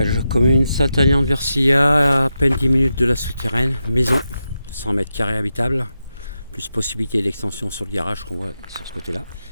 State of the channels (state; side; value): inverted; both; correlation -0.88